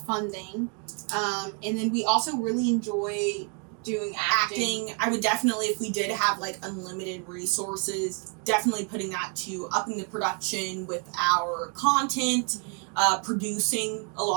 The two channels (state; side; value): quieter; left; 37.0 dB